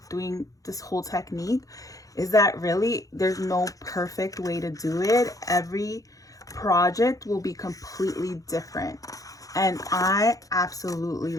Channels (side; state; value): right; late; 0.17 ms